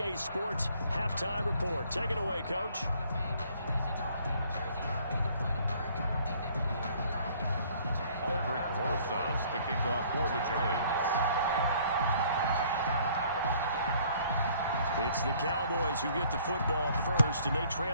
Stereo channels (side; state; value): both; inverted; correlation -0.59